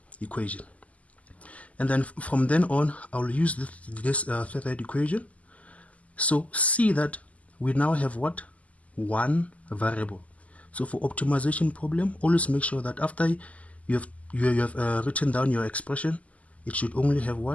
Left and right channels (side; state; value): right; late; 0.071 ms